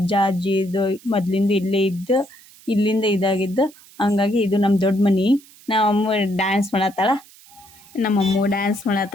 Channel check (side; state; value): right; noise; hiss, 24 dB below the sound